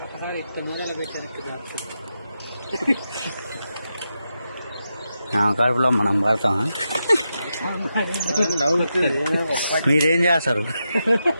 కడుపులో మనం పడతామా? మీరేం చేస్తారు?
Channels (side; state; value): both; inverted; correlation -0.87